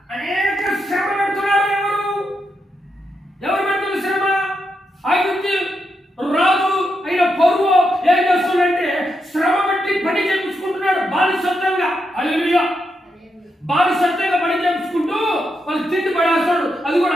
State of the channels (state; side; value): normal; both; correlation 0.83